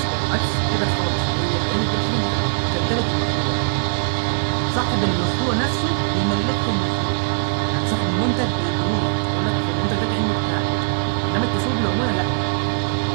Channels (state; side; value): silent; left; digital silence